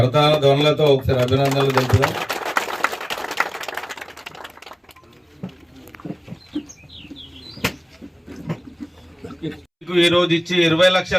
ధ్వనులతో ఒకసారి అభినందనలు తెలుపుదాం. ఈ రోజు ఇచ్చి 20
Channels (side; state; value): both; identical; correlation 1.00